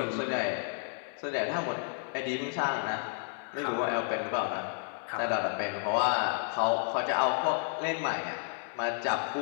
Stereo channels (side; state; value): right; silent; 57 dB below the other